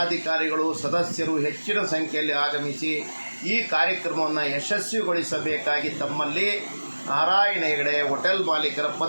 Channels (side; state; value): both; inverted; correlation -1.00